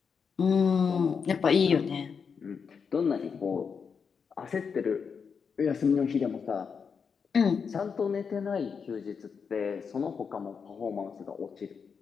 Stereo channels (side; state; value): right; quieter; 6.1 dB